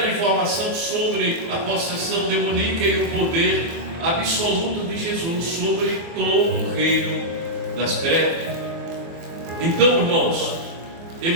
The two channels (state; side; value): late; left; 24 ms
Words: informação sobre a possessão demoníaca e o poder absoluto de Jesus sobre todo o reino das trevas. Então, irmãos,